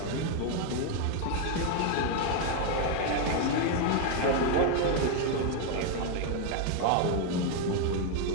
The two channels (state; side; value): different; both; correlation 0.01